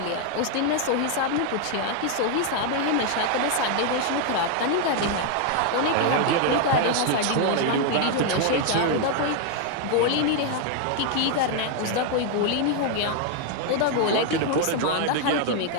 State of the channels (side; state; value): both; different; correlation 0.00